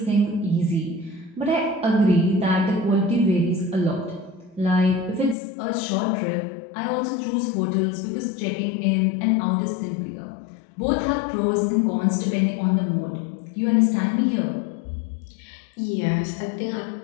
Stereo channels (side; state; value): right; drops out; at 5.4 s